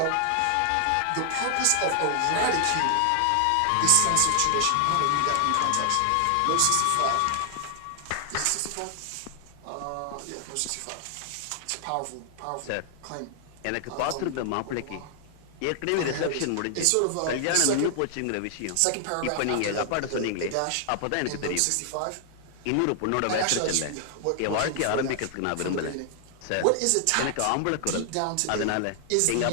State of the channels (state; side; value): different; both; correlation 0.00